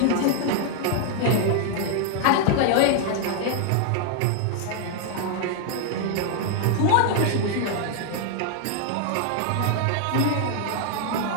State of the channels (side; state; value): both; different; correlation 0.00